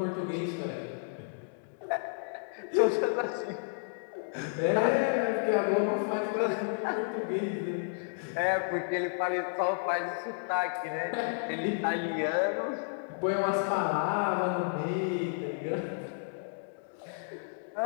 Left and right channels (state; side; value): silent; right; digital silence